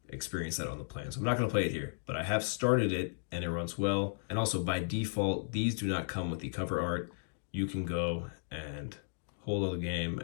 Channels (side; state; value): right; silent; digital silence